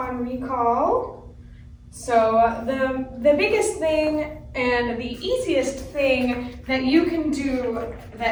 recall. So the biggest thing and the easiest thing that you can do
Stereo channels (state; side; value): identical; both; correlation 1.00